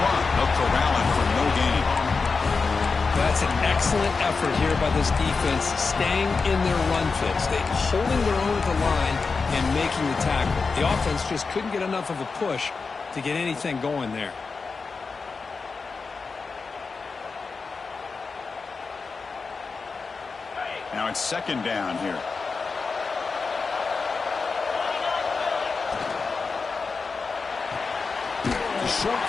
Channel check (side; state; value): right; quieter; 4.6 dB